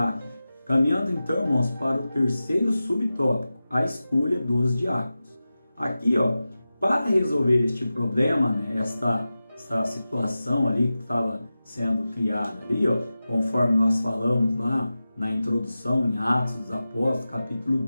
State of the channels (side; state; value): both; inverted; correlation -0.95